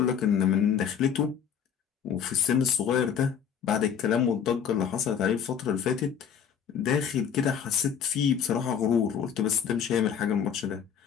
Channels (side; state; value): right; quieter; 7.9 dB